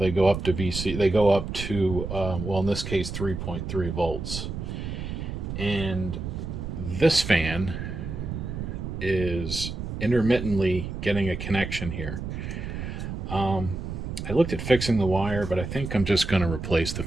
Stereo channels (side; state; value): right; noise; rumble, 6 dB below the sound